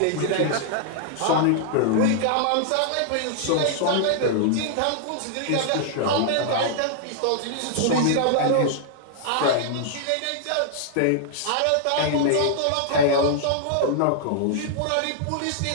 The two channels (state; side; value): different; both; correlation -0.01